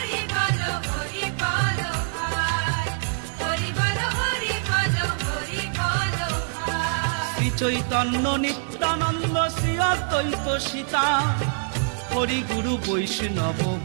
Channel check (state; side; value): silent; left; digital silence